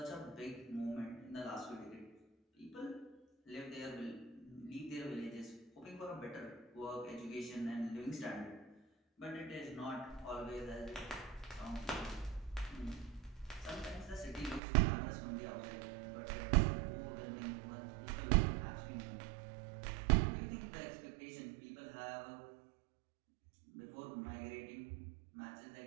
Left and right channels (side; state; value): left; drops out; at 14.6 s